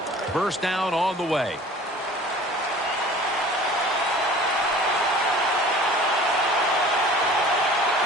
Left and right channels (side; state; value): both; normal; correlation 0.45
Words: First down on the way.